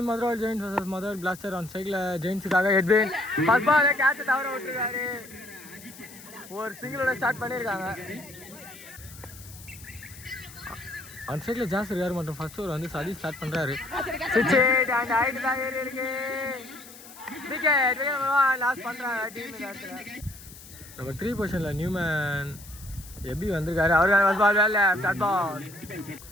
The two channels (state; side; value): noise; left; hiss, 18 dB below the sound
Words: Madurai Giants versus Madurai Blaster on cycle. Giants காக Edwin first ball கேட்ச் தவற விட்டுருக்காரு. ஒரு சிங்கிளோட ஸ்டார்ட் பண்ணிருக்காங்க. ஆன் சைக்கிள் ஜாஸ்தி இருக்காரு மற்றும் ஃபர்ஸ்ட் ஓவர் வந்து சதி ஸ்டார்ட் பண்றாரு. சிக்ஸ் அண்ட் ஹைட் தான் ஏறி இருக்கு. விக்கெட் லாஸ் பண்றாங்க டீம் இடத்துல. நம்பர் 3 பொசிஷன்ல நியூமேன் எபி வந்திருக்காரு. அவருக்கான ஃபர்ஸ்ட் பால் வேல start ball.